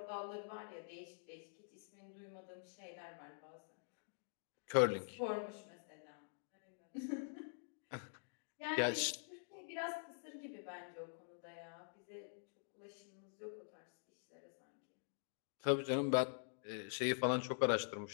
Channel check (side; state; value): right; silent; digital silence